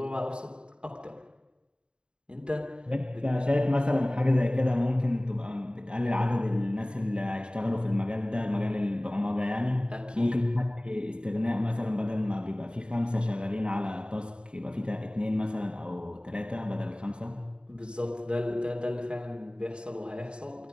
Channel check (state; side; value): late; left; 0.052 ms